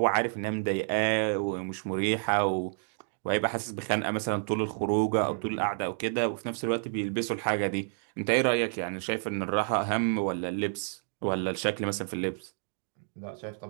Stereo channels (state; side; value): silent; left; digital silence